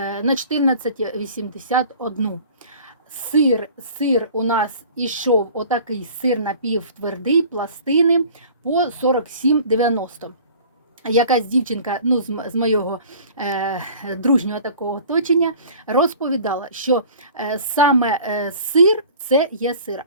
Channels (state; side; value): inverted; both; correlation -0.46